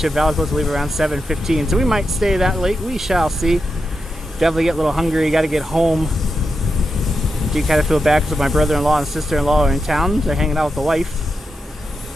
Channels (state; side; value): normal; both; correlation 0.87